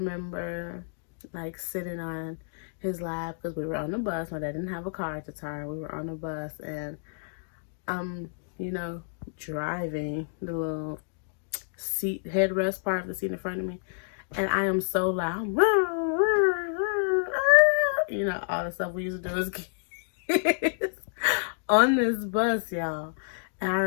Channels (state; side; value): silent; right; digital silence